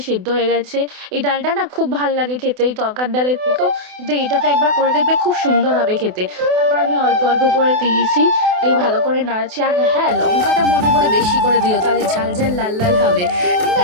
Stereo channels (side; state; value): left; late; 28 ms